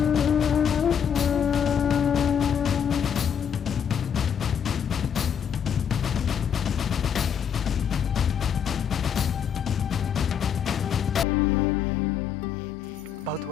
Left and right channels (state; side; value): quieter; right; 8.0 dB